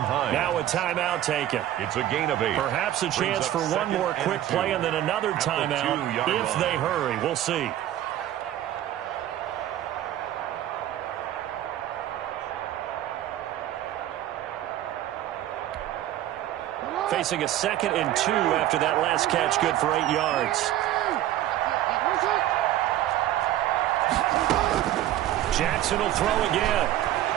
Now a timeout taken. It's a gain of 8. Perhaps a chance for one more quick play and then another timeout if they hurry. We'll see. Facing a 2nd and 2 after that last catch, good for 8 yards. Jackson will throw again.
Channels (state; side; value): quieter; left; 13.0 dB